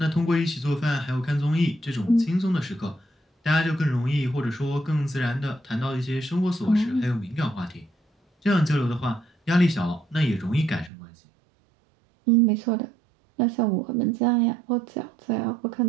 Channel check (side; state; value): left; drops out; at 10.9 s